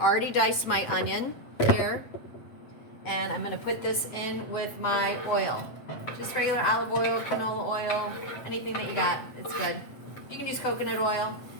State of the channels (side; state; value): right; late; 7.9 ms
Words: diced my onion here, and I'm going to put this in with my oil. Just regular olive oil, canola oil, anything that you got, it's good. You can use coconut oil.